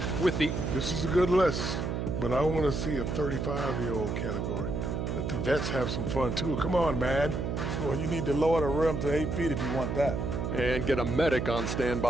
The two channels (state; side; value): noise; right; hum, 2 dB below the sound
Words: with the... This is a good list, but I want to see a 35-year-old category. Let the vets have some fun, too. Come on, man. Well, you need to lower the rim to 8 feet if you want that. And get a medic on